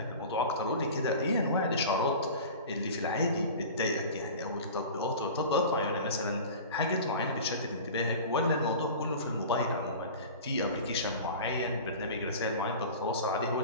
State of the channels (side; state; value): both; inverted; correlation -0.36